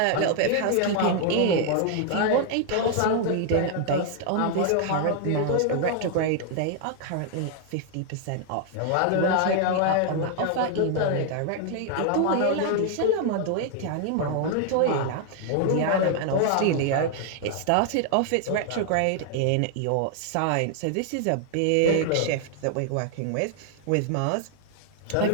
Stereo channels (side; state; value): both; different; correlation 0.00